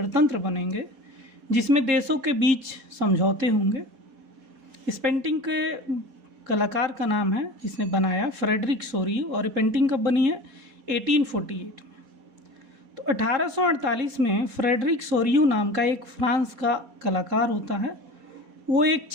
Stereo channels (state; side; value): late; left; 4.2 ms